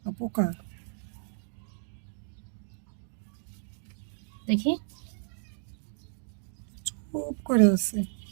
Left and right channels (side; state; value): left; silent; 56 dB below the other